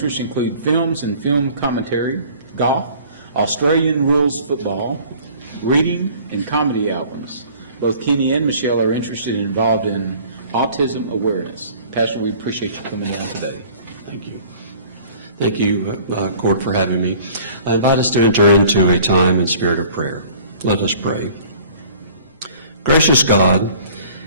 include films and film commentary, golf, Australian rules football, reading, and comedy albums. Both Kenny and Michelle are interested and involved in autism awareness. Pastor, we appreciate you coming down today. Thank you. Thank you, Court, for having me. I invite us to enter into a time and spirit of prayer. Let us pray. Gracious God,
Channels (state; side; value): inverted; both; correlation -0.50